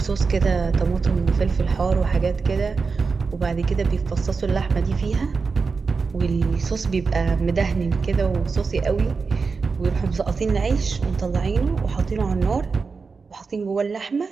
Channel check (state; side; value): quieter; left; 4.8 dB